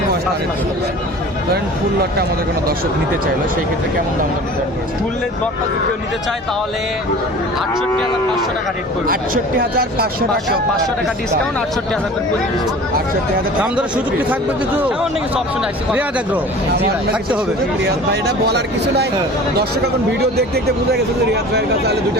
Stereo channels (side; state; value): both; normal; correlation 0.42